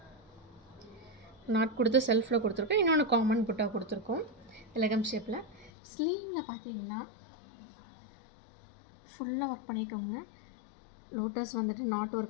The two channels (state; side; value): drops out; right; at 5.7 s